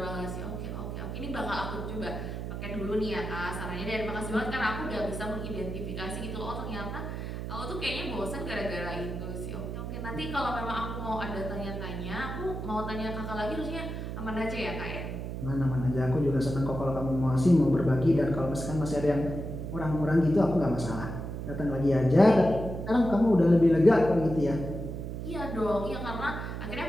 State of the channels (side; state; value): right; noise; hum, 6 dB below the sound